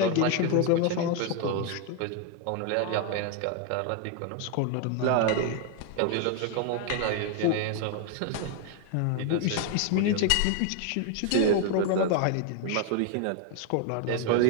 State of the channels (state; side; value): different; both; correlation 0.01